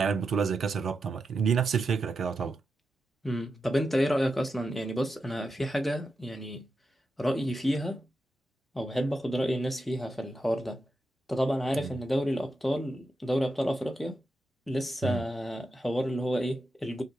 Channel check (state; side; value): normal; both; correlation 0.88